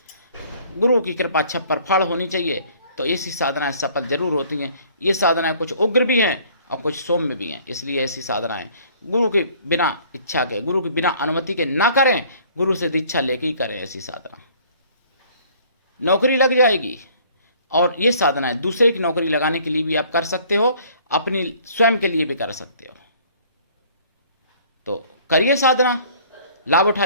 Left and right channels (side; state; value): both; inverted; correlation -0.56